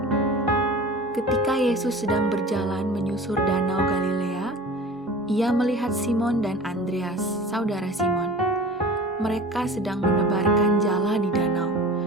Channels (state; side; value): normal; both; correlation 0.40